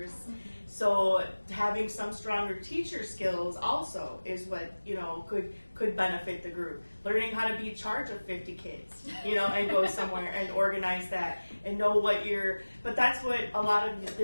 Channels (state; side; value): inverted; both; correlation -1.00